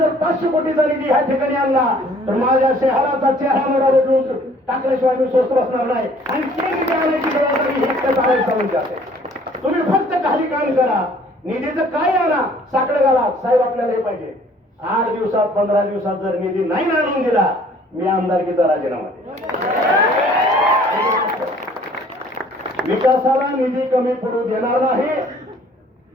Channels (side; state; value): both; normal; correlation 0.56